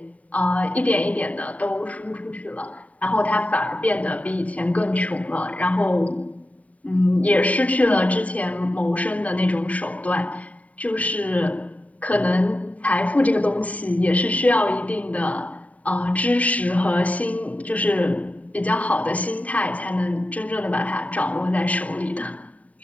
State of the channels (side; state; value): right; late; 0.069 ms